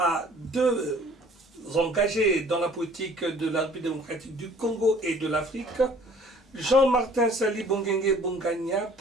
deux engagés dans la politique de la République démocratique du Congo et de l'Afrique. Jean-Martin Sali Bongenge Bongania,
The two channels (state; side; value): normal; both; correlation 0.53